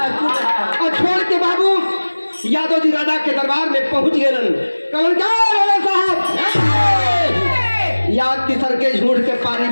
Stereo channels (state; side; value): inverted; both; correlation -1.00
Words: और छोड़ के बाबू यादव जी राजा के दरबार में पहुंच गए। कहलन क्या राजा साहब याद तीसर के झूठ के पानी